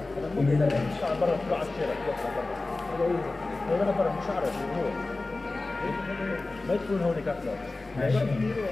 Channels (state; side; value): quieter; right; 3.2 dB